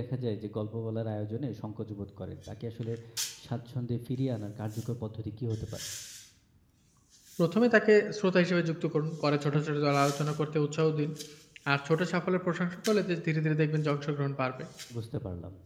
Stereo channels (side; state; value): both; identical; correlation 1.00